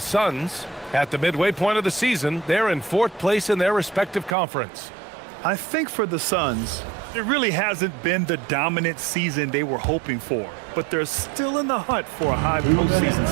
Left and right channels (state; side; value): drops out; left; at 4.4 s